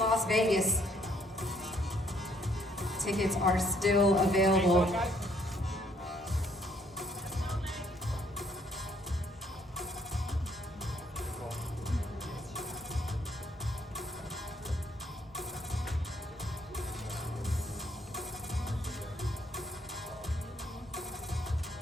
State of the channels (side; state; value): both; normal; correlation 0.67